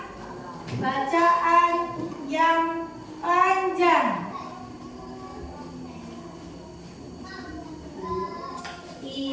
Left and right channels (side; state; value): both; identical; correlation 1.00